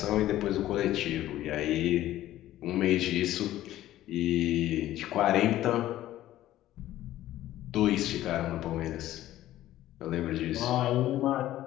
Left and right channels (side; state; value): right; quieter; 14.0 dB